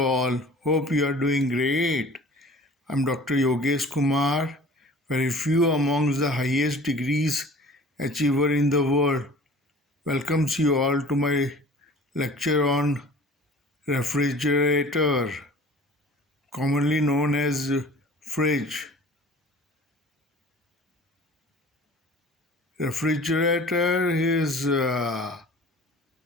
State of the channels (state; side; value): normal; both; correlation 0.45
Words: Hope you are doing great. I'm Dr. Yogesh Kumar, very few amongst the highest degrees achiever in the world. Welcomes you all to my lecture on refrigerator, commonly known as fridge. Refrigerator is